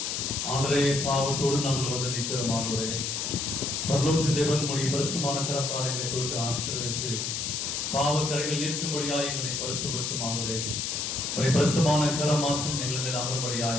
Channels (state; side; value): noise; left; hiss, 2 dB below the sound